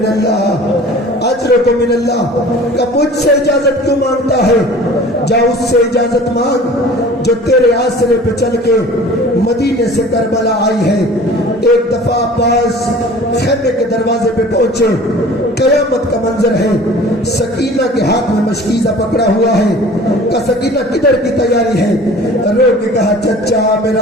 اللہ، اجرک من اللہ کہ مجھ سے اجازت کیوں مانگتا ہے؟ جا اس سے اجازت مانگ جو تیرے آسرے پہ چل کے مدینے سے کربلا آئی ہے۔ ایک دفعہ عباس خیمے کے دروازے پہ پہنچے، قیامت کا منظر ہے، سکینہ کے ہاتھ میں مشکیزہ پکڑا ہوا ہے کہ سکینہ کدھر کی تیاری ہے؟ رو کے کہا چچا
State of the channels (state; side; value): normal; both; correlation 0.45